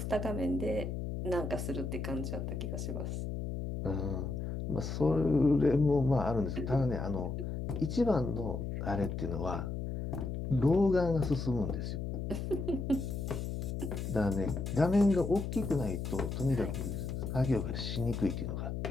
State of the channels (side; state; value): left; noise; hum, 4 dB below the sound